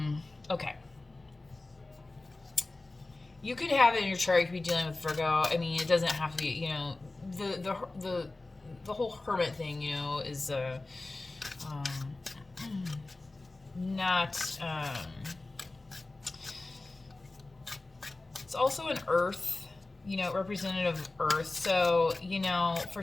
Okay. You could have it in your chart. You could be dealing with Virgo. I mean, it doesn't have to be, you know, the whole hermit thing, you know, is not. It's also an Earth, you know, representative of Earth. So, you know, for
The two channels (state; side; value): quieter; right; 3.1 dB